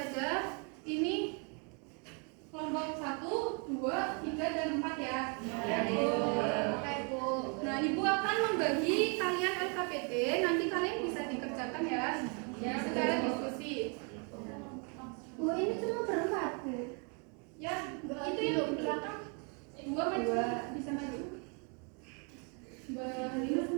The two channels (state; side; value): quieter; left; 36.5 dB